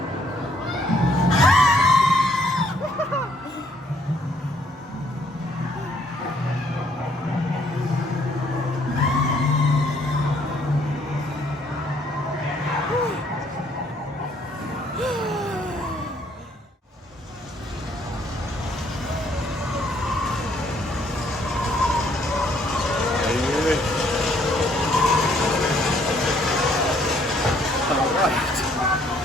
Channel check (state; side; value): normal; both; correlation 0.66